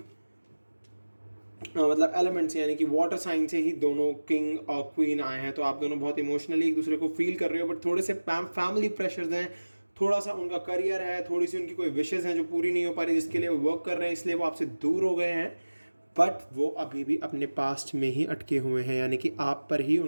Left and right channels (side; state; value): both; inverted; correlation -1.00